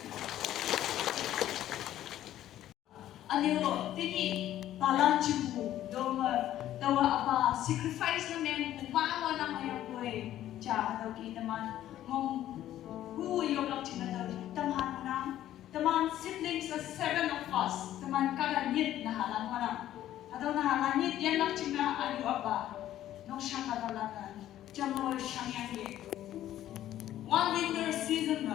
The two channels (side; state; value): right; quieter; 12.7 dB